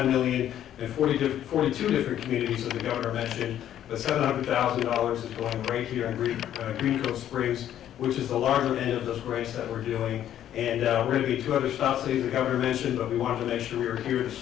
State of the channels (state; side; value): quieter; right; 11.1 dB